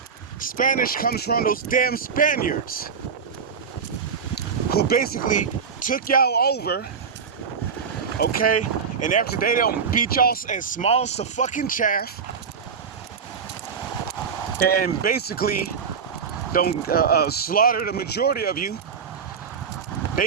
Spanish comes from those damn Spaniards who basically took y'all over, okay? And after they don't beat y'all as small as the fucking chaff, and basically don't slaughter the majority of you.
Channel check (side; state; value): left; quieter; 6.2 dB